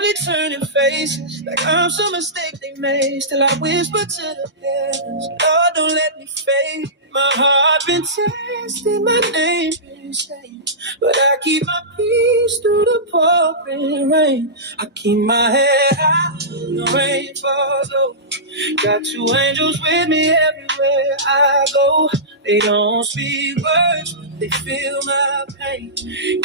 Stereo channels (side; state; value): both; normal; correlation -0.19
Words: turning faces like I'm some mistake they made. Still I whisper to the heavens, Lord, don't let me fade. My heart been tested, my name been stained, but I keep my peace through the pouring rain. I keep my head high, the rain falls low. Got 2 angels with me everywhere I go. They don't speak words, they feel my pain.